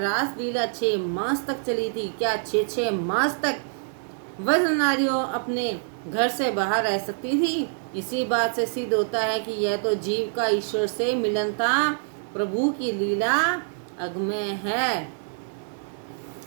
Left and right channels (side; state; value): left; silent; digital silence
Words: 6 मास तक चली थी। क्या 6 मास तक वज्र नारियों अपने घर से बाहर रह सकती थी? इसी बात से सिद्ध होता है कि यह तो जीव का ईश्वर से मिलन था। प्रभु की लीला अगम्य है।